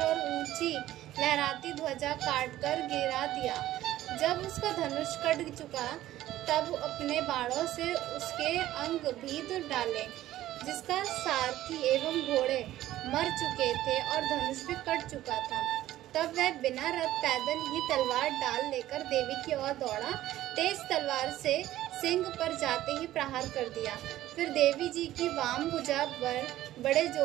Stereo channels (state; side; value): quieter; left; 14.3 dB